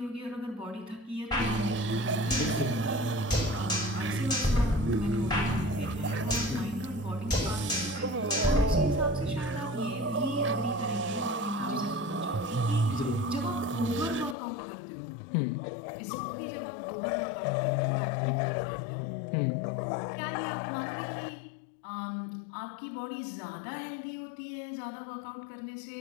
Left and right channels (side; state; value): right; drops out; at 14.4 s